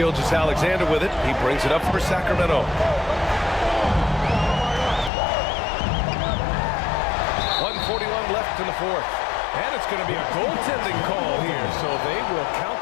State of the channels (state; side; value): drops out; right; at 5.1 s